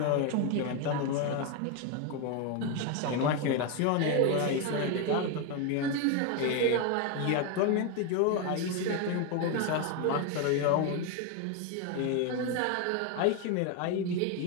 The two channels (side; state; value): both; different; correlation 0.01